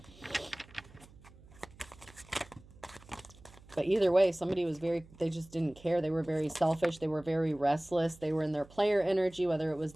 But either way, somebody was they just didn't care. They were very selfish. They were very restless. They were in their player energy, whether it was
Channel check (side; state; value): right; noise; hum, 23 dB below the sound